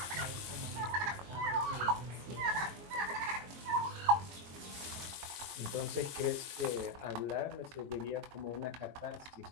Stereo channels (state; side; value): late; left; 22 ms